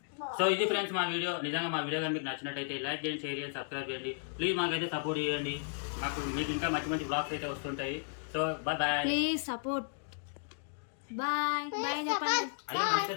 సో ఇది ఫ్రెండ్స్ మా వీడియో. నిజంగా మా వీడియో కానీ మీకు నచ్చినట్టయితే లైక్ చేయండి, షేర్ చేయండి, సబ్స్క్రైబ్ చేయండి. ప్లీజ్ మాకైతే సపోర్ట్ చేయండి. మీకు ఇంకా మంచి మంచి బ్లాగ్స్ అయితే వస్తుంటాయి. So bye bye, please support. Bye bye చెప్పండి. అయ్యో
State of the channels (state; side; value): silent; right; digital silence